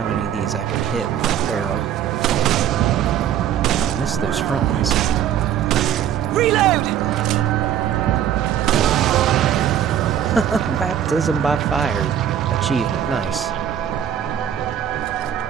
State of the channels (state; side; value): quieter; left; 9.9 dB